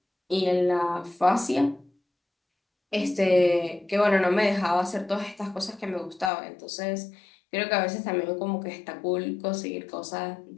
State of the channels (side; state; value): right; drops out; at 6.3 s